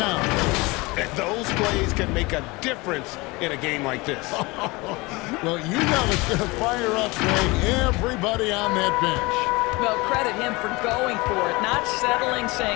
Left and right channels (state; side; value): quieter; right; 23.9 dB